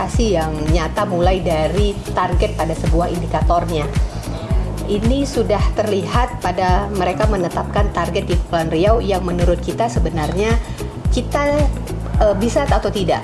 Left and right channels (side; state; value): both; identical; correlation 1.00